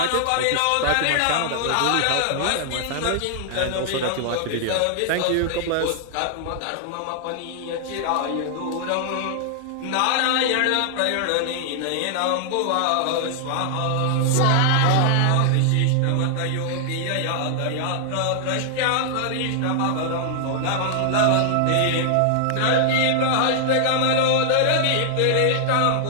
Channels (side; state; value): both; different; correlation 0.00